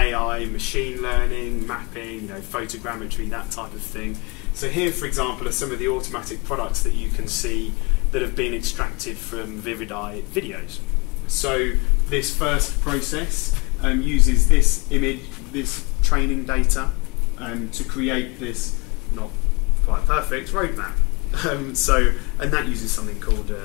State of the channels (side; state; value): right; quieter; 28.2 dB